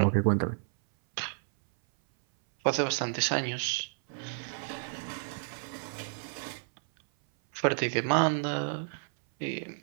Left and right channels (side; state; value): left; silent; 57 dB below the other